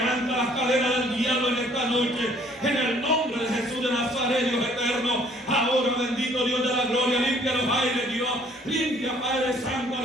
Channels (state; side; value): normal; both; correlation 0.59